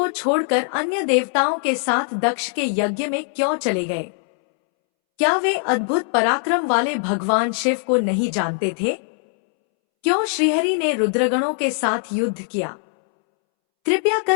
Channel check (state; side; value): silent; right; 65 dB below the other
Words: छोड़कर अन्य देवताओं के साथ दक्ष के यज्ञ में क्यों चले गए? क्या वे अद्भुत पराक्रम वाले भगवान शिव को नहीं जानते थे? क्यों श्रीहरि ने रुद्रगणों के साथ युद्ध किया? कृपया